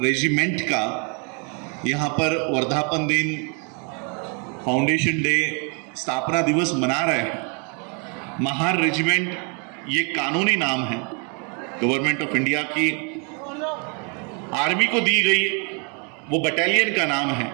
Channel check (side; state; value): left; quieter; 36.2 dB